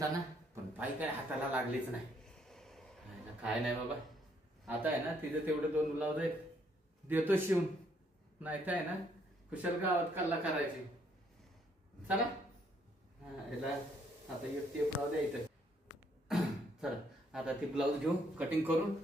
पण बाई काय हाताला लागलीच नाही. काय नाही बाबा, आता आहे ना तिचं तेवढे 2 ब्लाऊज आहेत, देतो शिवून. नाही तर आहे ना कुशल गावात कल्ला करायची. चला याला आता एक टेप राहू द्या इथं. चला आता ती ब्लाऊज घेऊ, कटिंग करून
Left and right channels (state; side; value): normal; both; correlation 0.69